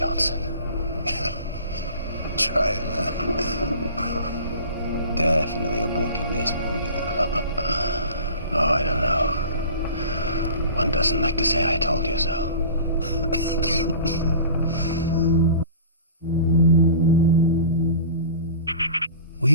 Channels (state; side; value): inverted; both; correlation -0.41